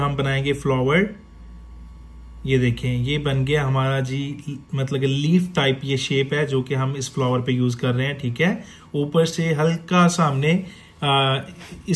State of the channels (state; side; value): identical; both; correlation 1.00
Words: बनाएंगे फ्लावर। ये देखें ये बन गया हमारा जी मतलब कि लीफ टाइप ये शेप है जो कि हम इस फ्लावर पे यूज कर रहे हैं। ठीक है, ऊपर से हल्का सा हमने